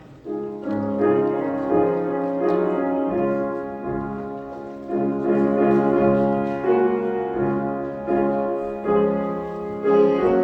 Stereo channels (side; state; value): both; identical; correlation 1.00